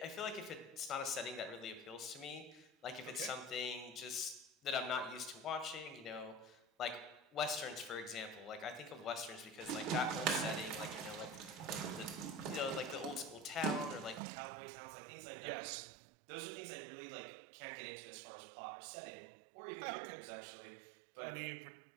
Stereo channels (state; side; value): drops out; left; at 14.2 s